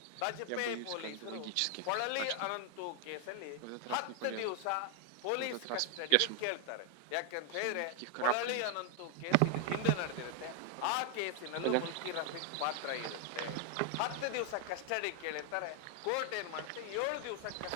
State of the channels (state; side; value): different; both; correlation 0.00